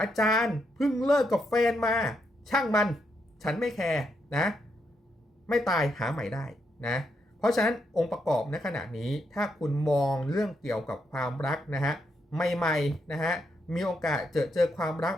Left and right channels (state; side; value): normal; both; correlation 0.79